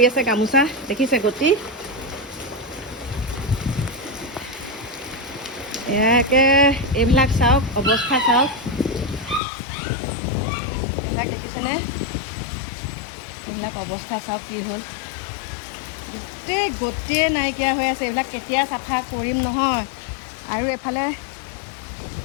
আছে গামোচা দেখিছে গতি। এয়াকে এইবিলাক চাওক অৱস্থা চাওক, এইবিলাক দেখিছেনে? এইবিলাক অৱস্থা চাওক কি হ'ল, গোটেই নাইকিয়া হৈ আছে। এইবিলাক কেতিয়া চাফা কৰিম নহয়। আৰু এইফালে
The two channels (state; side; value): drops out; right; at 9.4 s